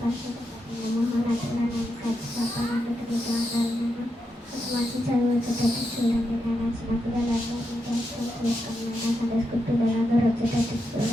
పరిశుద్ధమైన మహోన్నతులను ప్రతిష్టాపనకు వందనాలు. మంచి చదువు వచ్చేటట్టు చూడండి నేను చిన్న పిల్లలందరినీ జ్ఞాపకం చేసుకోండి నేను సండే స్కూల్ పిల్లలందరూ వచ్చేటట్టు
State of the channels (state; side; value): normal; both; correlation 0.85